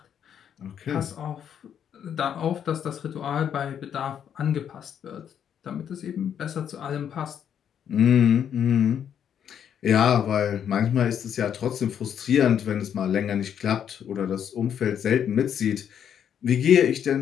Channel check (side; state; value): right; quieter; 8.8 dB